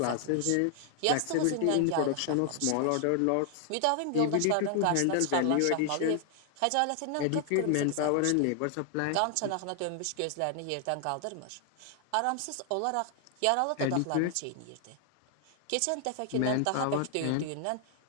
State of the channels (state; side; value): different; both; correlation 0.00